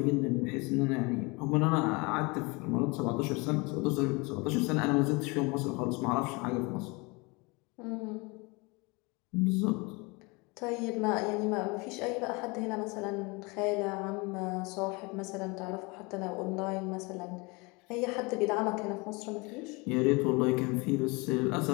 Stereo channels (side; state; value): right; quieter; 27.3 dB